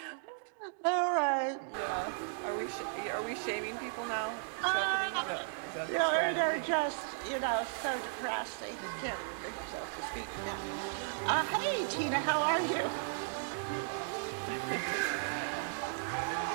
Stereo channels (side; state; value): left; silent; digital silence